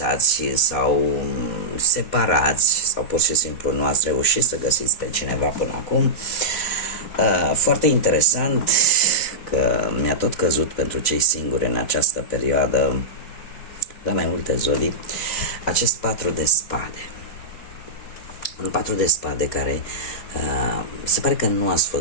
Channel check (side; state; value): right; late; 4.1 ms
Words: sau separați sau pur și simplu nu ați reușit să găsiți pe cineva până acum. Foarte interesant că mi-a tot căzut pentru cei singuri în această perioadă, la mai multe zori, acest 4 de spade. Un 4 de spade care se pare că nu ați